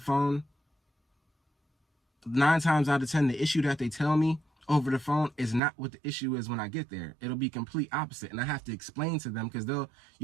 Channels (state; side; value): drops out; left; at 5.6 s